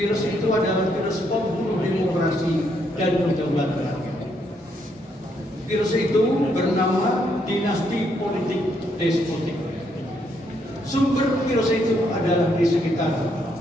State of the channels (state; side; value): normal; both; correlation 0.74